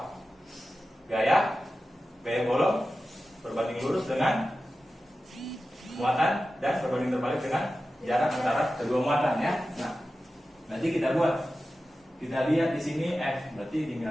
Gaya Coulomb berbanding lurus dengan muatan dan berbanding terbalik dengan jarak antara kedua muatan ya. Nah, nanti kita buat. Kita lihat di sini F, berarti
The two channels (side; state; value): both; normal; correlation 0.94